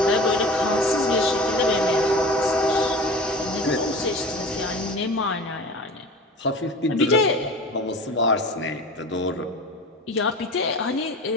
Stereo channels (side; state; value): both; normal; correlation 0.37